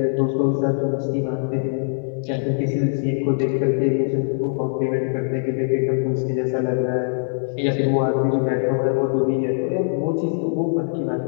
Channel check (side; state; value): right; silent; digital silence